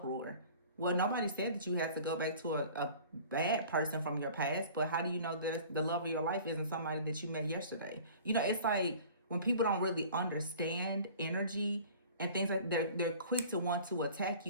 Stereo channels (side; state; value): both; inverted; correlation -0.45